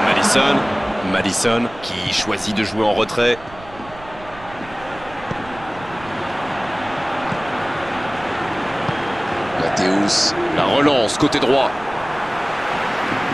Madison qui choisit de jouer en retrait. Mathéus. La relance côté droit.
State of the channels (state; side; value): noise; right; rumble, 19 dB below the sound